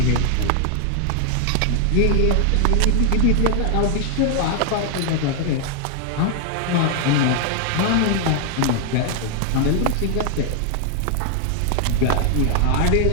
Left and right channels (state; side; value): different; both; correlation 0.00